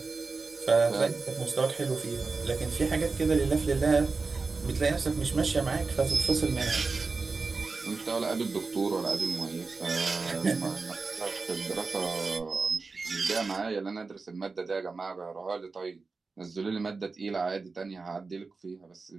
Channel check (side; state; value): left; quieter; 4.2 dB